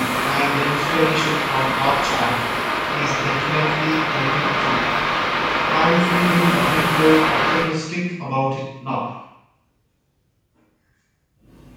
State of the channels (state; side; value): identical; both; correlation 1.00